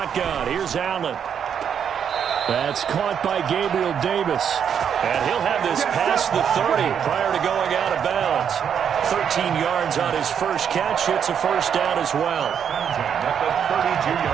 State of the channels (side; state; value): left; quieter; 8.0 dB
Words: Here's Allen. That's caught by Gabriel Davis. And he'll have this past the 30 prior to going out of bounds. 13 yards on his first catch. It's a 1st down as well. At the